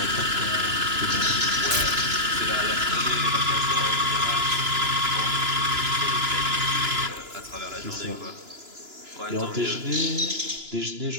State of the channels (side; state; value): left; late; 2.9 ms